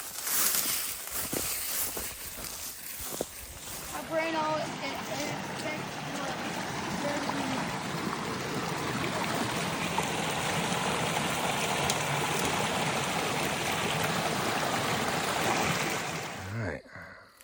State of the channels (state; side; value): identical; both; correlation 1.00